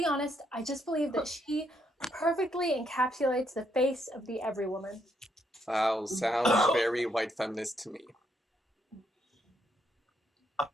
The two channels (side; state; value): both; normal; correlation 0.75